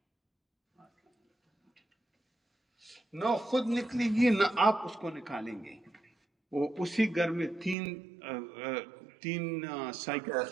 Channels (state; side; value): drops out; left; at 7.8 s